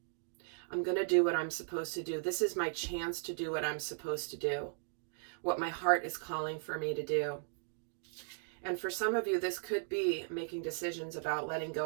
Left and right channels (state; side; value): silent; left; digital silence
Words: I'm going to do what I'm supposed to do. This is my chance to do what I'm supposed to do, what my heart is calling for me to do. And for some of you, this could be making decisions about letting